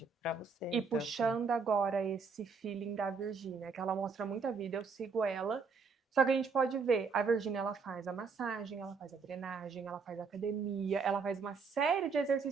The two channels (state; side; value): quieter; left; 5.0 dB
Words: para você. E Então, assim, puxando agora esse feeling da Virgínia, que ela mostra muita vida, eu sigo ela. Só que a gente pode ver, a Virgínia ela faz a massagem, ela faz a drenagem, ela faz a academia, ela faz uma série de